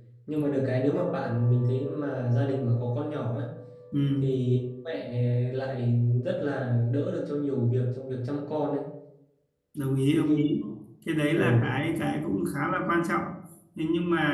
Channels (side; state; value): both; identical; correlation 1.00